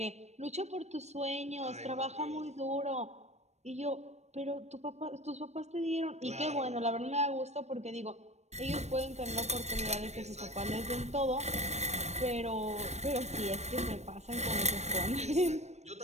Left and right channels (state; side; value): late; left; 0.32 ms